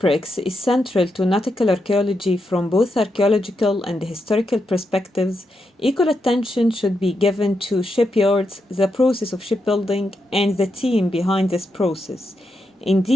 is central to nautical archaeology from both archaeological and historical perspectives, equal attention should be given to shipyards, the process of shipbuilding, and the team behind this process.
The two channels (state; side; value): normal; both; correlation 0.84